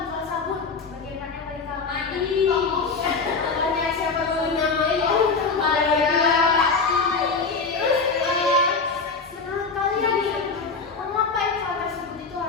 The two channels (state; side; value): quieter; right; 4.5 dB